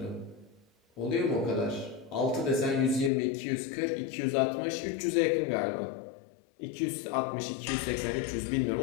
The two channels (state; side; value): drops out; right; at 3.1 s